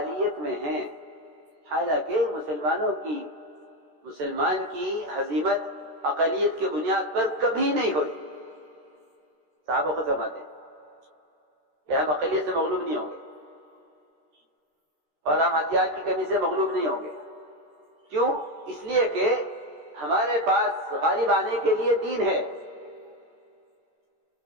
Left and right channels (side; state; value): left; late; 13 ms